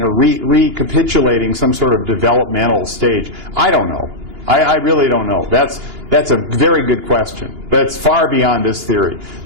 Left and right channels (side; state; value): left; late; 2.9 ms